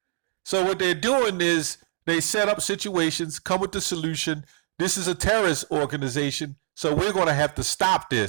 So what they're doing is they set up situations, come with the solution. This is a terrorist organization, so we're going to have to stop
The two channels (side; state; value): left; silent; digital silence